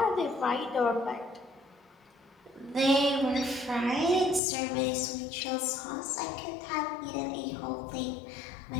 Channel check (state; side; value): drops out; right; at 4.4 s